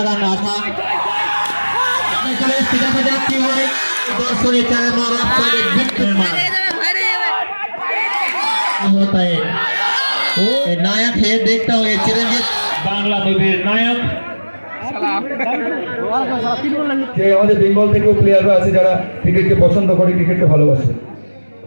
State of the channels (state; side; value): inverted; both; correlation -1.00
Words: রান আশা দেখা যাক কি হয়। দর্শনের नायक है, देखता हूँ ये चिरंजीत बांग्ला मूवीर नायक যে আমাদের বেঙ্গল থেকেও প্লেয়াররা আছে যারা ক্রিকেটকে পছন্দ করে, ক্রিকেটকে ভালোবাসে।